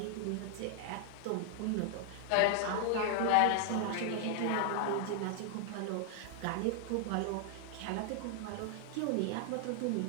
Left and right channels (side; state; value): both; different; correlation 0.00